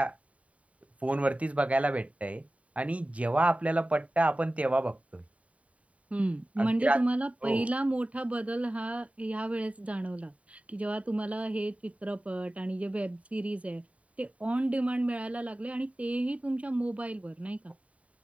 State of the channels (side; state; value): left; late; 0.067 ms